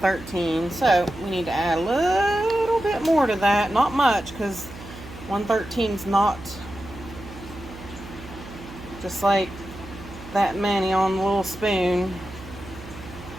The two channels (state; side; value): noise; right; hum, 15 dB below the sound